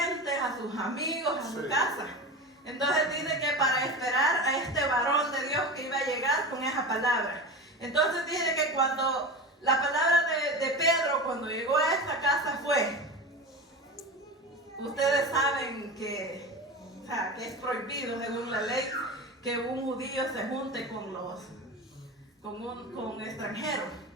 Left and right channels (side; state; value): both; normal; correlation 0.28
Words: a sus amigos, a su casa. Entonces dice que para esperar a este varón de Dios que iba a llegar con esa palabra. Entonces dice que cuando la palabra de Pedro, cuando llegó a esta casa fue, ustedes saben que es prohibido según la ley que un judío se junte con extranjeros.